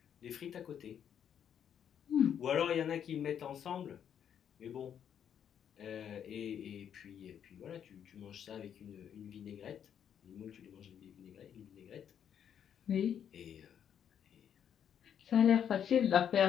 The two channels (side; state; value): right; quieter; 8.8 dB